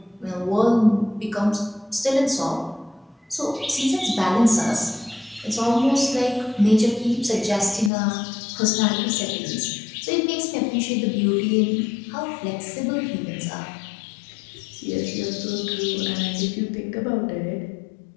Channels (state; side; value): drops out; right; at 7.9 s